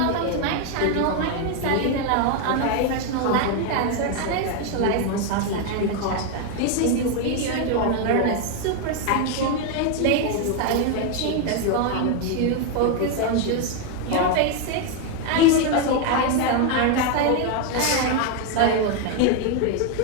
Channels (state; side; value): different; both; correlation 0.01